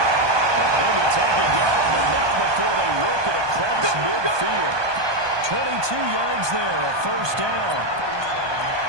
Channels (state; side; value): late; left; 1.2 ms